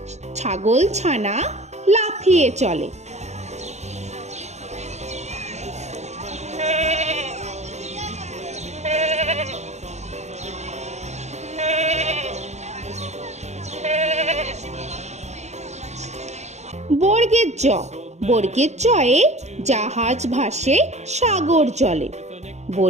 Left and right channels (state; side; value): late; left; 0.33 ms